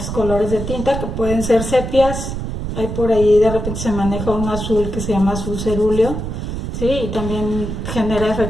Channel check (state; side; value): noise; right; rumble, 5 dB below the sound